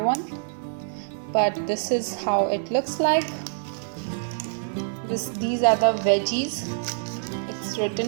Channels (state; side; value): silent; left; 61 dB below the other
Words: But this is how it looks like. These are the veggies. It's